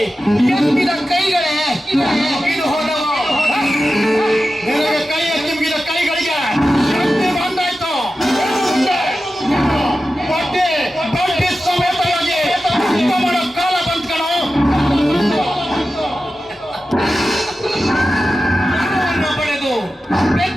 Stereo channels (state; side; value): normal; both; correlation 0.93